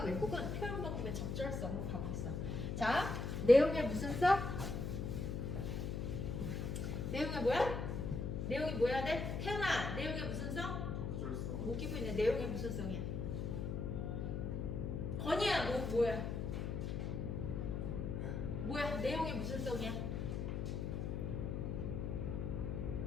왜곡은 표현 방법의 적절성으로 가고 있어. 자, 내용에 무슨 써? 내용에 뭐야? 내용이 뭐야 돼? 태연아, 내용에 무슨 성? 웃기고 있네. 내용에 무슨 성이야? 건이야, 뭐야? 뭐야? 내용에 무슨 성이야?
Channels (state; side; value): noise; left; hum, 2 dB below the sound